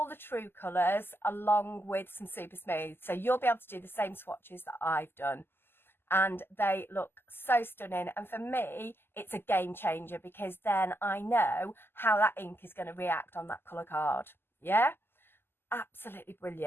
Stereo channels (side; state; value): right; late; 0.11 ms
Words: the true colours along with some super smooth. So you'll be able to do the same swatches that I've done, and they look so stunning. And for me, it's a game changer, because then I know how that ink is going to react on that colour card. Yeah, absolutely